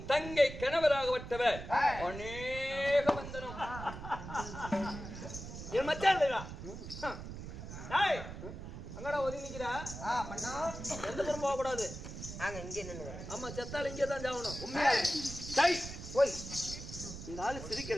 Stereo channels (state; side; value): noise; right; rumble, 10 dB below the sound